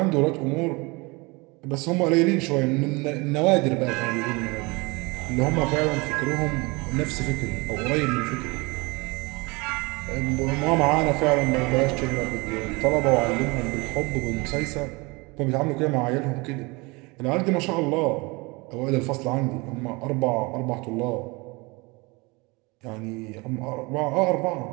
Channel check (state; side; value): quieter; left; 26.0 dB